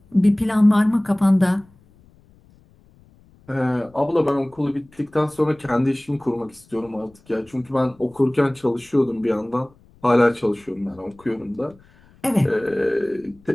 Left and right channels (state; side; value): noise; left; rumble, 29 dB below the sound